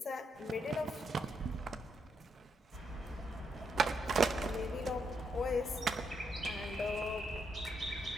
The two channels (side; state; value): both; normal; correlation 0.79